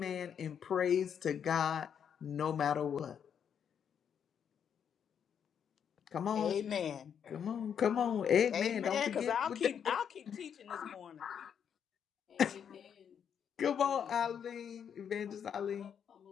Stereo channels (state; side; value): quieter; right; 8.0 dB